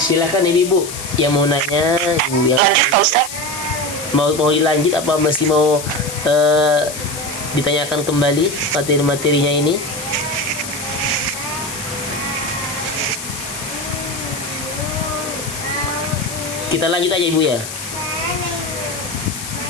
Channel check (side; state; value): left; noise; hiss, 9 dB below the sound